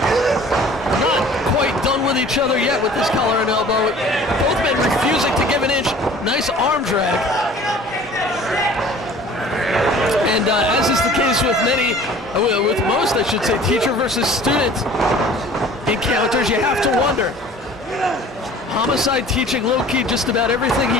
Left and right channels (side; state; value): both; normal; correlation 0.48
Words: not quite done with each other yet with this collar and elbow. Both men refusing to give an inch. Nice arm drag. And as is the case with with most, I should say, teacher versus student encounters, you have to wonder. Homicide teaching Low-key just about everything